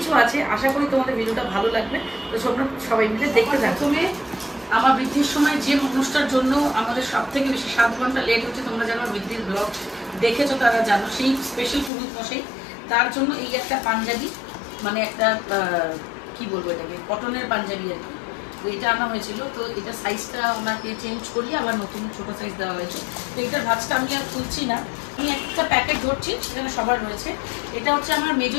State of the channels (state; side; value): drops out; right; at 11.9 s